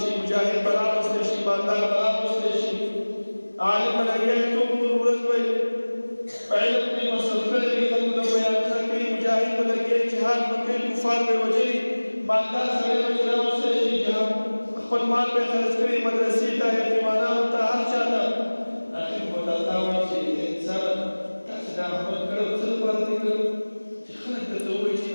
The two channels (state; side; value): inverted; both; correlation -1.00